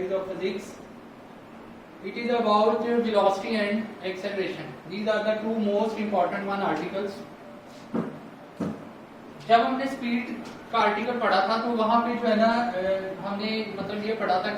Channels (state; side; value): identical; both; correlation 1.00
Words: of physics. It is about velocity and acceleration. These are the two most important one articles. जब हमने speed का article पढ़ा था तो वहां पे जो है ना हमने मतलब ये पढ़ा था